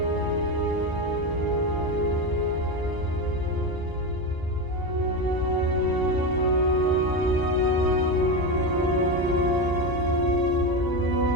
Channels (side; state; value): left; late; 1.0 ms